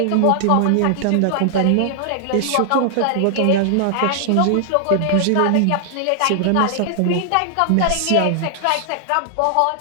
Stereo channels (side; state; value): both; different; correlation 0.00